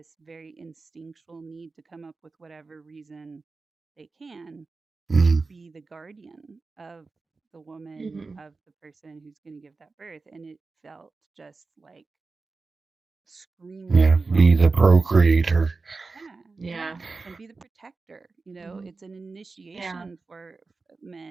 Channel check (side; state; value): left; quieter; 4.0 dB